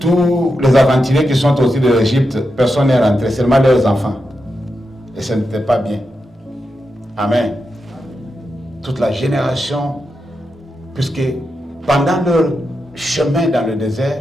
les aventuriers qui sont sortis de l'Égypte, personne n'est rentré, seulement leurs enfants. Et ce n'était pas bien. Amen. Toute la génération, puisque pendant leur chemin dans le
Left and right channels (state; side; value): normal; both; correlation 0.87